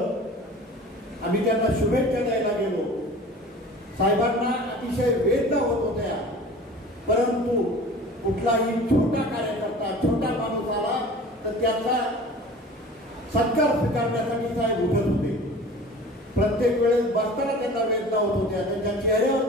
आम्ही त्यांना शुभेच्छा द्यायला गेलो. साहेबांना अतिशय वेदना होत होत्या, परंतु कुठलाही छोटा कार्यकर्ता, छोटा माणूस आला तर त्याचा सत्कार स्वीकारण्यासाठी साहेब उठत होते. प्रत्येक वेळेस बसताना त्यांना वेदना होत होत्या, त्यांच्या चेहऱ्यावर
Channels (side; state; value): both; normal; correlation 0.41